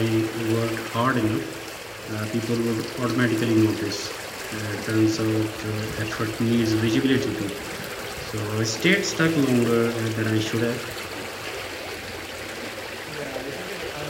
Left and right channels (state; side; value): identical; both; correlation 1.00